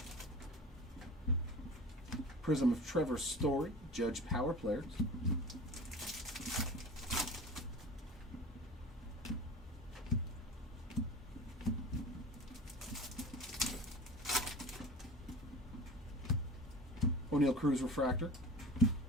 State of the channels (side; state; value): both; normal; correlation 0.36